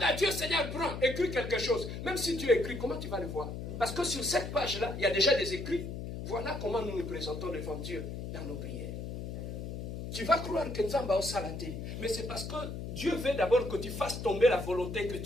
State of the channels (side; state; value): left; noise; hum, 6 dB below the sound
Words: à Dieu, Seigneur, prends, écris quelque chose. Même si tu écris, comment tu vas le voir? Parce que sur cette page-là, il y a déjà des écrits. Voilà comment nous nous présentons devant Dieu dans nos prières. Tu vas croire que nous avons salaté, mais c'est parce que Dieu veut d'abord que tu fasses tomber la volonté que